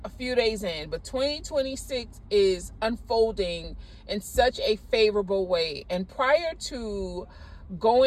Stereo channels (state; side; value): identical; both; correlation 1.00